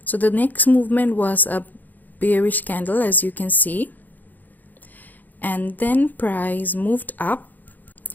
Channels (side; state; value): right; late; 0.084 ms